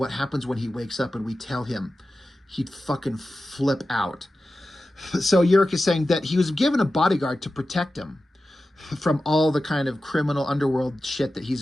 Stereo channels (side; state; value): both; normal; correlation 0.93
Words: happens when he wakes up and we tell him? He'd fucking flip out. So Urich is saying that he was given a bodyguard to protect him from all the kind of criminal underworld shit that